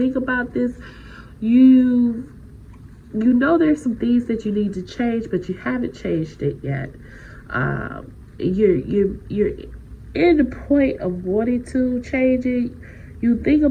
about this. You know there's some things that you need to change, but you haven't changed it yet. You're in the point of wanting to change it. You think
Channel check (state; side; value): identical; both; correlation 1.00